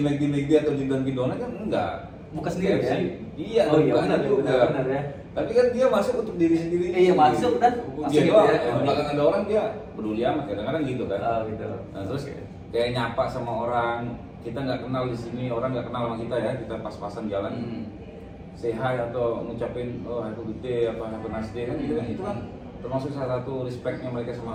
McD atau di Dunkin Donut kan enggak. Buka sendiri KFC. ya? Iya, Oh iya, bukan benar, juga. benar ya. Tapi kan dia masuk untuk diri sendiri. Iya, masuk dan Dia masuk gitu doang, ya. di belakang ada orang dia peduli amat, kadang-kadang gitu kan. Oh gitu. Nah, terus kayak nyapa sama orang, kita nggak kenal di sini, orang nggak kenal sama kita ya, kita pas-pasan jalan. Say hi atau ngucapin oh have a good day, apa have a nice day kan gitu kan, itu kan termasuk salah satu respectnya mereka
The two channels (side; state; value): both; identical; correlation 1.00